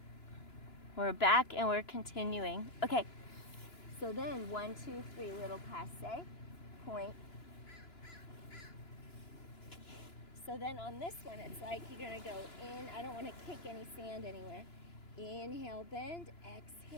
we're back and we're continuing. Okay, so then 1, 2, 3, little passe, point. So then on this one, it's like you're gonna go in. I don't want to kick any sand anywhere. Inhale, bend,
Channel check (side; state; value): right; late; 2.9 ms